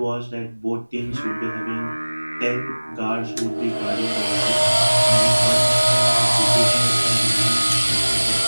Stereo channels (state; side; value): inverted; both; correlation -1.00